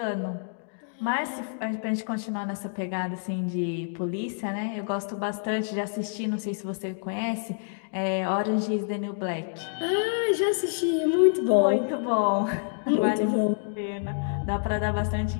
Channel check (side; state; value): right; silent; digital silence